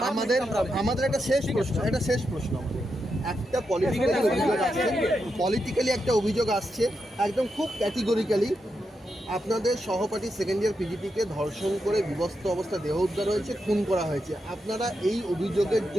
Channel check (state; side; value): normal; both; correlation 0.85